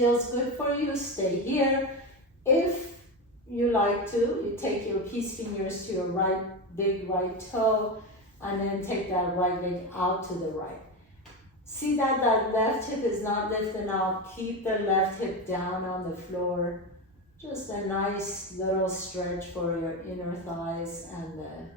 good for you, stay here. If you like to, you take your peace fingers to your big right toe, and then take that right leg out to the right. See that left hip is not lifting out. Keep the left hip down on the floor. Just a nice little stretch for your inner thighs and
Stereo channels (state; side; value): normal; both; correlation 0.17